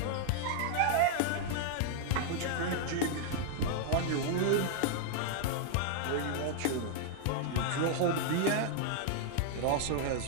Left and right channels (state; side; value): different; both; correlation -0.01